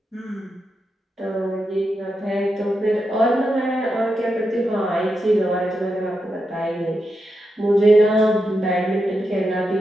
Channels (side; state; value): both; normal; correlation 0.86